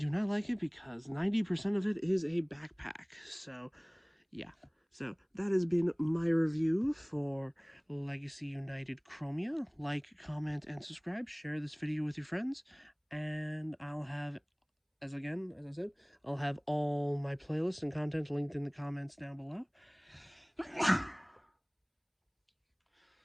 not like it because 90% of it is a backpack. So yeah. So that has been my review for Legacy United Chromia. Like, comment, and subscribe. Share this video with your friends. And I'll have, as I said, I'll have all my playlists and content linked in the comments down below.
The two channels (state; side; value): identical; both; correlation 1.00